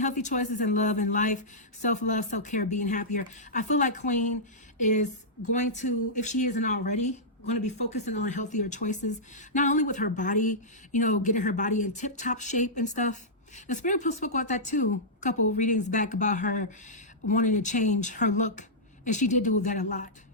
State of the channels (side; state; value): both; normal; correlation -0.13